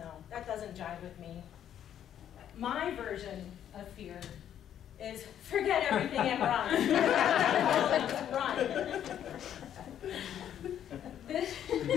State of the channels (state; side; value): quieter; right; 10.1 dB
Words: that doesn't jive with me. My version of fear is forget everything and run. Run.